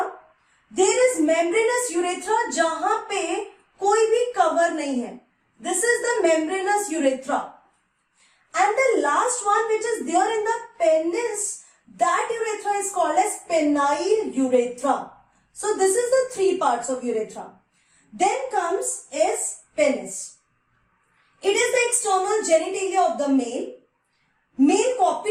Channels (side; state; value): both; identical; correlation 1.00